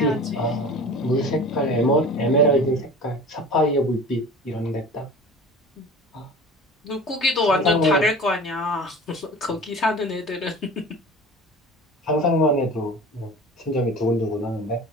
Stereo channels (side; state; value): both; normal; correlation 0.38